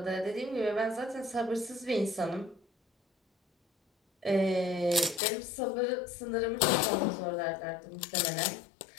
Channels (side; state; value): right; drops out; at 5.2 s